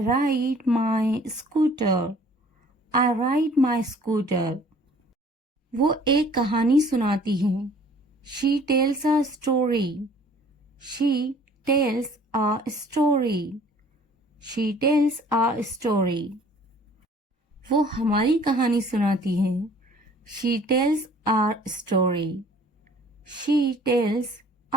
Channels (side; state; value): both; normal; correlation 0.53